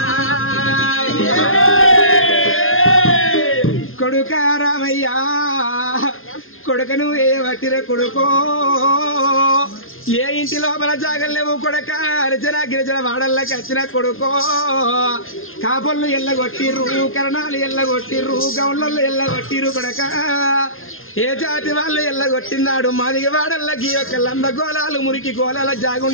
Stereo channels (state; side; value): late; right; 0.60 ms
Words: కొడుక రామయ్యా, కొడుకను ఏ వట్టిర కొడుకో, ఏ ఇంటి లోపల జాగలేవు కొడక, అర్జన గిరిజన వాడల్లోకి వచ్చిన కొడుకో. కాపుళ్ళు ఎల్లగొట్టిర్రు, కరణాలు ఎల్లగొట్టిర్రు, గౌళ్ళల్లో ఎల్లగొట్టిర్రు కొడక. ఏ జాతి వాళ్ళు ఎల్లగొట్టిందాడు మాదిగ వాడల్లకి యొక్క లంద గోళాలు మురికి గోళాల